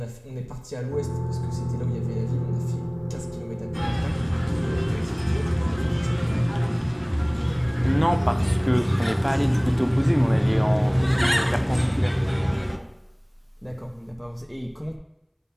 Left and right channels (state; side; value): identical; both; correlation 1.00